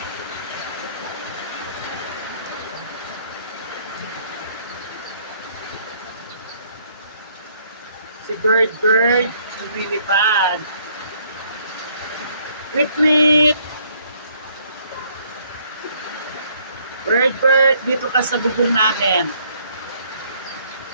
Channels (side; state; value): both; inverted; correlation -0.65